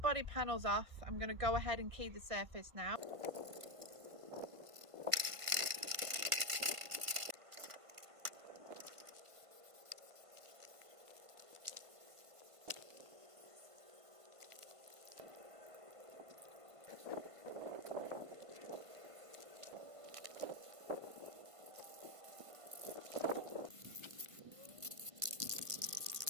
panels off. I'm going to go ahead and key the surface now.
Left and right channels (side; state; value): left; late; 1.5 ms